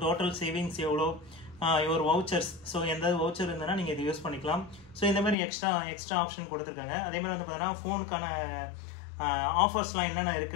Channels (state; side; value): drops out; right; at 5.4 s